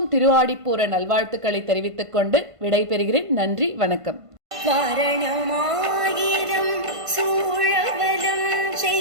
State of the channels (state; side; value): late; left; 1.5 ms